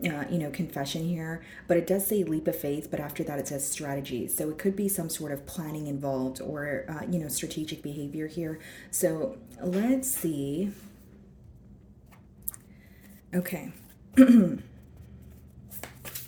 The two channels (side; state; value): both; identical; correlation 1.00